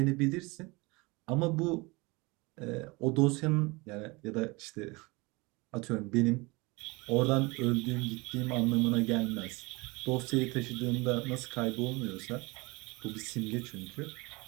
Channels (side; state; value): left; quieter; 25.4 dB